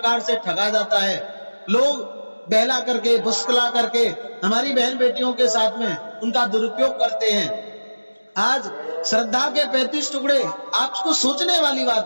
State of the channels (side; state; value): both; inverted; correlation -1.00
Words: से ठगा जाता है। लोग बहला करके, फुसकला करके हमारी बहन बेटियों के साथ में उनका दुरुपयोग करते हैं। आज श्रद्धा के 35 टुकड़े, आपको सोचने वाली